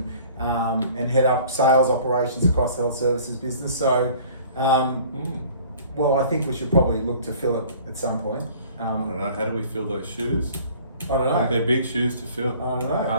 head up sales operations across the health services business. So, well, I think we should probably look to fill it at some point. I don't know, how do we fill those shoes? I don't know. They're big shoes to fill. I don't know.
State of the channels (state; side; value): inverted; both; correlation -0.50